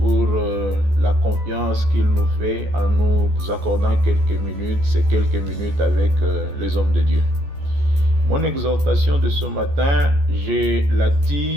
la confiance qu'il nous fait en nous accordant ces quelques minutes avec les hommes de Dieu. Mon exhortation de ce matin, je la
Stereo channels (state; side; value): late; left; 14 ms